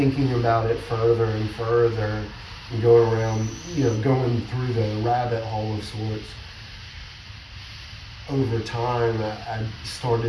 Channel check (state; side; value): identical; both; correlation 1.00